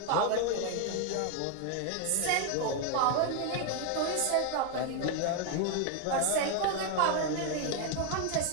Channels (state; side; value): different; both; correlation 0.00